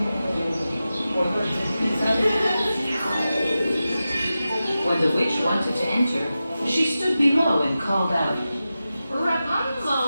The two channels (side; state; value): both; inverted; correlation -0.93